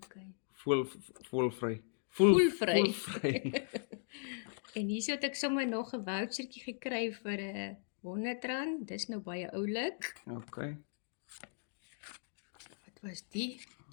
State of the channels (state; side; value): silent; right; digital silence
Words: Volvry. En hier het ek sommer nog 'n vouchertjie gekry vir R100. Dis nou baie oulik. Okay. Wat was die?